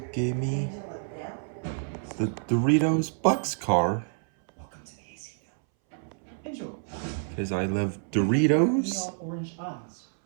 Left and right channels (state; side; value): silent; left; 59 dB below the other